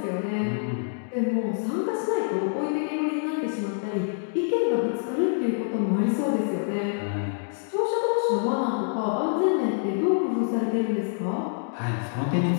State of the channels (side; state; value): right; silent; digital silence